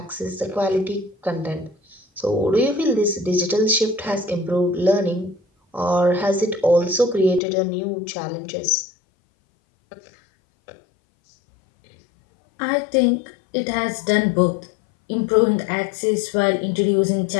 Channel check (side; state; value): right; drops out; at 7.4 s